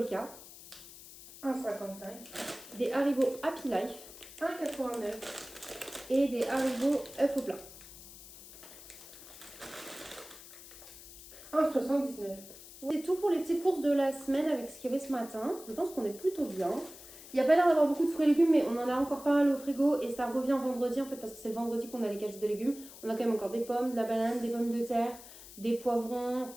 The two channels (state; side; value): noise; left; hiss, 17 dB below the sound